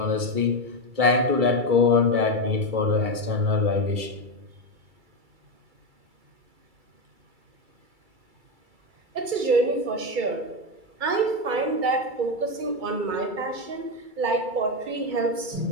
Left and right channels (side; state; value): left; late; 2.3 ms